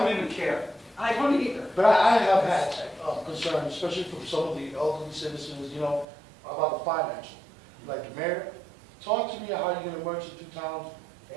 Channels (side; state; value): left; drops out; at 6.1 s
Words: even care. I don't either. But I have had concerns, especially from some of the elderly citizens, you know, about the financial. Like, Mayor, talk to me how you're gonna merge the two towns,